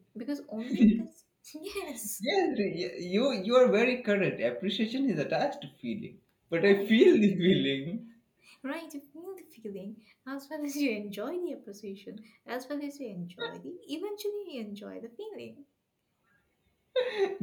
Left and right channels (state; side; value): identical; both; correlation 1.00